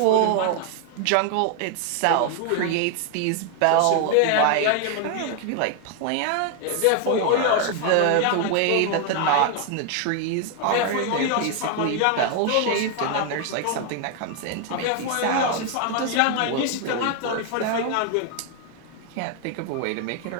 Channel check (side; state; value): both; different; correlation 0.00